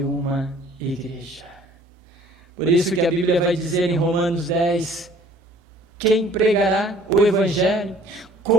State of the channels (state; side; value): normal; both; correlation 0.54